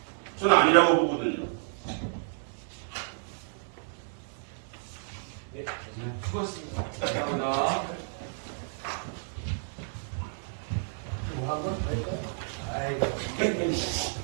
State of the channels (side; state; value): left; silent; digital silence